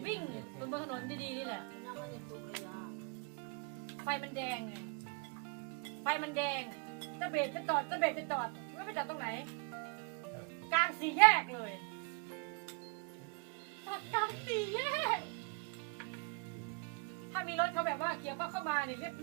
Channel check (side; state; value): left; quieter; 33.8 dB